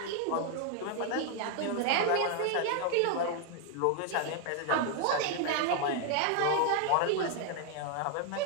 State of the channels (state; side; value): different; both; correlation 0.00